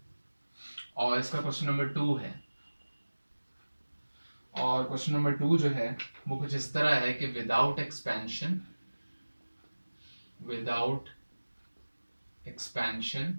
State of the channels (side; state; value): both; inverted; correlation -1.00